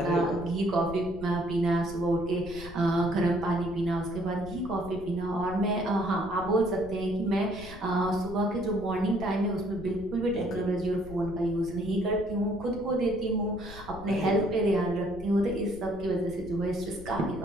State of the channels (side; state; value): left; noise; rumble, 15 dB below the sound